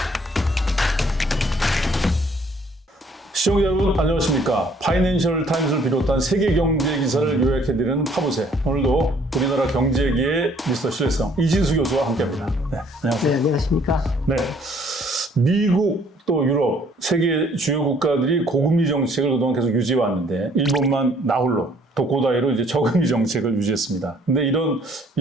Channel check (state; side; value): normal; both; correlation 0.61